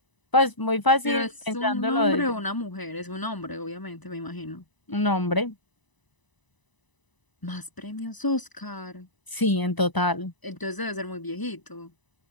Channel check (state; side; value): late; right; 1.0 ms